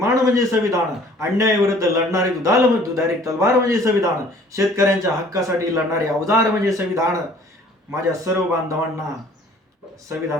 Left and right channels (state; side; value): normal; both; correlation 0.54